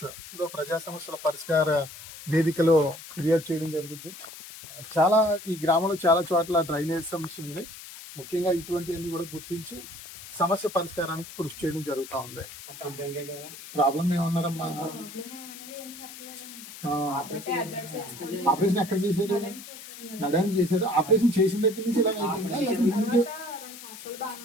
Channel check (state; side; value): noise; left; hiss, 14 dB below the sound